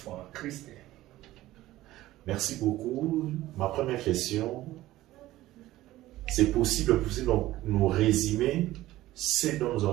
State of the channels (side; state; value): left; quieter; 16.1 dB